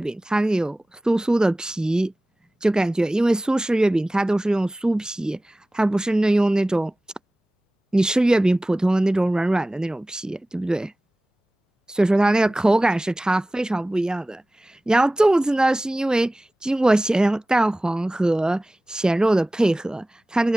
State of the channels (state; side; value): normal; both; correlation 0.98